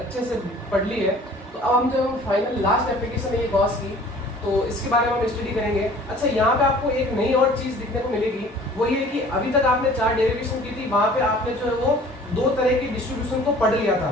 से पढ़ ली है, तो अब हम जो फाइनल लास्ट एप्लीकेशन है ये गॉस की, तो इसके बारे में हम स्टडी करेंगे। अच्छा, यहाँ पे आपको एक नई और चीज दिखने को मिलेगी, वो ये कि अभी तक आपने चार डेरिवेशन की थी, वहां पे आपने जो है वो दो तरह की डिस्ट्रीब्यूशन को पढ़ लिया था।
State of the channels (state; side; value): normal; both; correlation 0.49